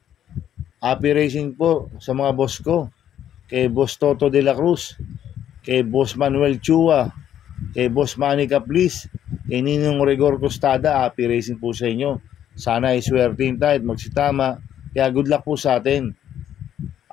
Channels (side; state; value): right; quieter; 10.5 dB